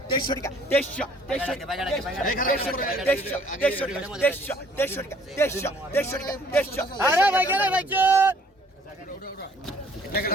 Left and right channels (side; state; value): both; normal; correlation 0.59